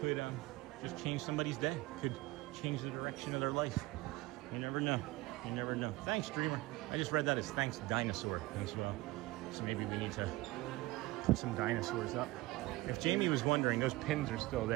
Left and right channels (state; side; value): quieter; left; 19.9 dB